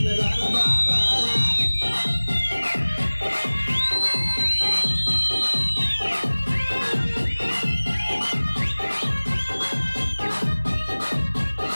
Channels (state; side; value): inverted; both; correlation -1.00